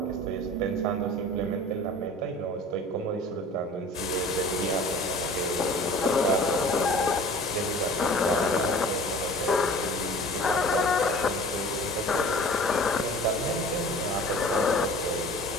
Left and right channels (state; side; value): normal; both; correlation 0.44